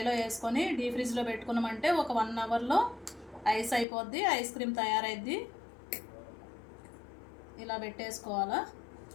వేసుకొని డీప్ ఫ్రిడ్జ్లో పెట్టుకున్నామంటే ఒక 1 అవర్లో ఐస్ అయిపోద్ది, ఐస్ క్రీమ్ తయారైద్ది. ఇలా పెట్టేసుకోవాలా.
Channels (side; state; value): right; drops out; at 3.9 s